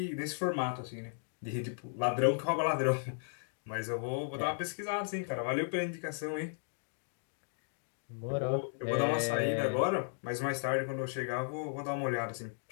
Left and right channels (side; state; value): right; silent; digital silence